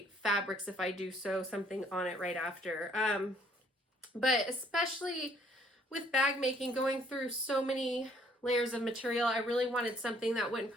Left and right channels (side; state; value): both; normal; correlation 0.63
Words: fabrics if I do sew something on it right after. But especially with bag making, going through so many layers of material, I really wanted something that wouldn't